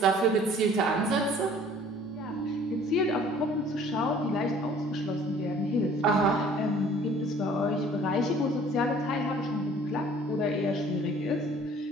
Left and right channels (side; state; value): both; normal; correlation 0.53